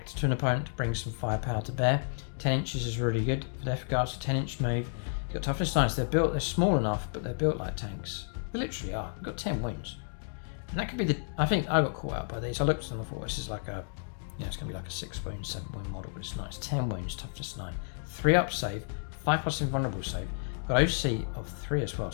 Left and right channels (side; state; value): right; silent; digital silence